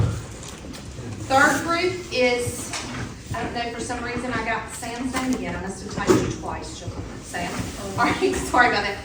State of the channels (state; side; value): identical; both; correlation 1.00